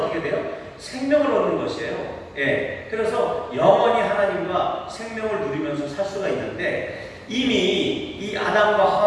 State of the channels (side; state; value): both; identical; correlation 1.00